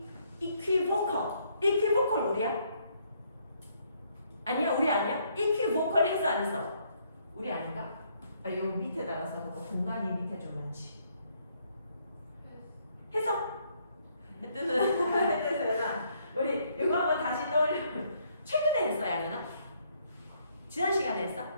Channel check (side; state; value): both; inverted; correlation -0.69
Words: 이퀴보컬 우리야? 아니야, 우리 아니야? 이퀴보컬 했어 안 했어? 우리 아닌가? 요 밑에다가 써놓고 공간이 밑에 좀 많지. 했어? 했어. 우리 이거 한번 다시 떠올려. 최근에 했어, 양현아? 지난 시간에 했어?